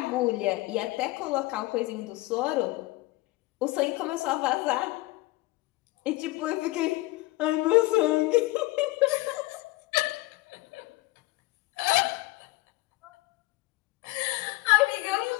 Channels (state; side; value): quieter; right; 20.4 dB